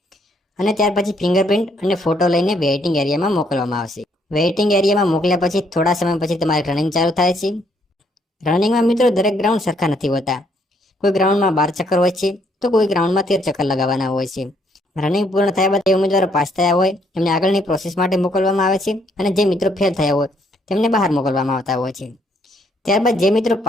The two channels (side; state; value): both; normal; correlation 0.69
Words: અને ત્યાર પછી ફિંગરપ્રિન્ટ અને ફોટો લઈને વેઇટિંગ એરિયામાં મોકલવામાં આવશે. વેઇટિંગ એરિયામાં મોકલ્યા પછી થોડા સમય પછી તમારી રનિંગ ચાલુ થાય છે. રનિંગમાં મિત્રો દરેક ગ્રાઉન્ડ સરખા નથી હોતા. કોઈ ગ્રાઉન્ડમાં 12 ચક્કર હોય છે તો કોઈ ગ્રાઉન્ડમાં 13 ચક્કર લગાવવાના હોય છે. રનિંગ પૂર્ણ થયા બાદ જે ઉમેદવારો પાસ થયા હોય એમને આગળની પ્રોસેસ માટે મોકલવામાં આવે છે અને જે મિત્રો ફેલ થયા હોય તેમને બહાર મોકલવામાં આવતા હોય છે. ત્યારબાદ જે મિત્રો